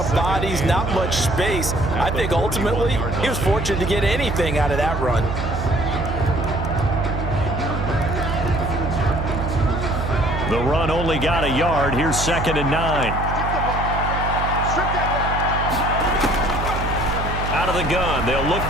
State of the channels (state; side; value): noise; right; hum, 4 dB below the sound